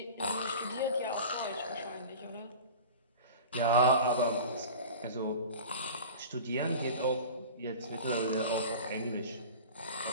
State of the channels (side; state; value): both; inverted; correlation -0.36